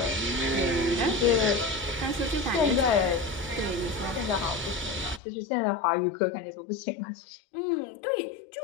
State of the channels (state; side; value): drops out; right; at 5.2 s